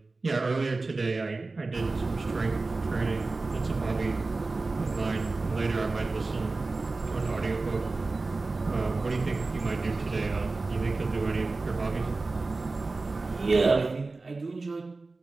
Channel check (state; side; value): quieter; left; 3.6 dB